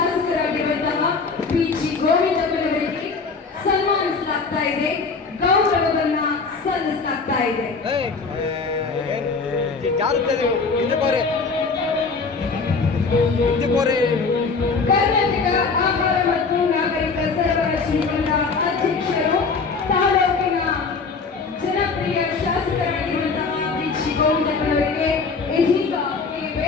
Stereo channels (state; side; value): quieter; right; 4.6 dB